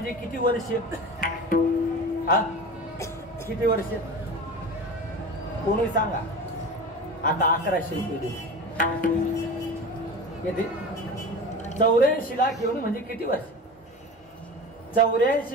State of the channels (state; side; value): normal; both; correlation 0.32